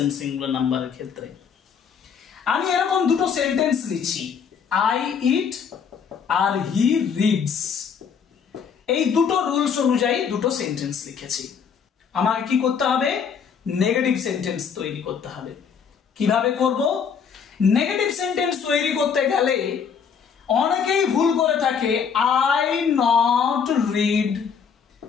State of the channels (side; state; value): right; quieter; 6.7 dB